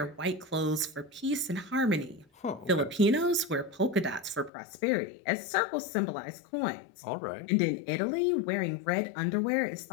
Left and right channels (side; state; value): right; drops out; at 4.5 s